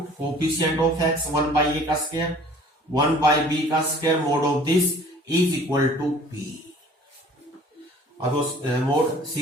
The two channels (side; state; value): both; normal; correlation 0.51